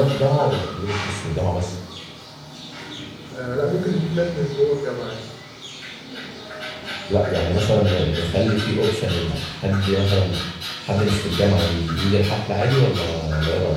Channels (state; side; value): identical; both; correlation 1.00